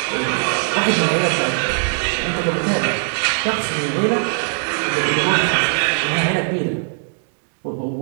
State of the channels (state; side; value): silent; left; digital silence